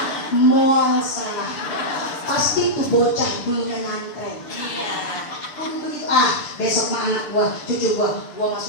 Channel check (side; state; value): right; late; 6.9 ms